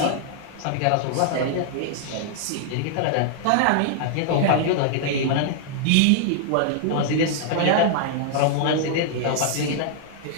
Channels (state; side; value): different; both; correlation -0.01